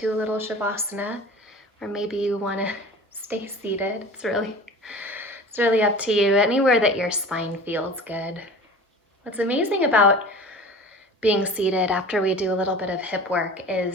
a little Shavasana, or maybe you want to stay seated. It's really up to you. Anywhere that your spine feels good. What's amazing about being seated after we do a little bit of hip work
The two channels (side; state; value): both; normal; correlation 0.39